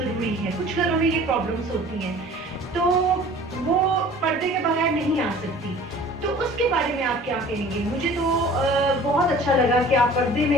ہے. کچھ گھروں میں یہ پرابلمس ہوتی ہیں تو وہ پردے کے بغیر نہیں آ سکتی. تو اس کے بارے میں آپ کیا کہیں گے؟ مجھے تو بہت اچھا لگا کہ آپ پردے میں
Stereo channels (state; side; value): normal; both; correlation 0.47